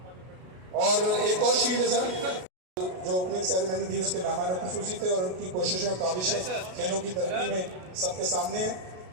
और एक और शील्ड है सर, जो ओपनिंग सेरेमनी थी उसके मेहमान खुसूसी थे और उनकी कोशिशें, काविशें खेलों की तरक्की में सबके सामने है।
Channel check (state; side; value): late; left; 32 ms